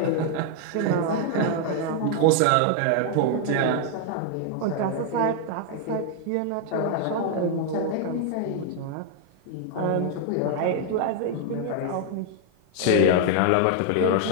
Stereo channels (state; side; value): different; both; correlation 0.00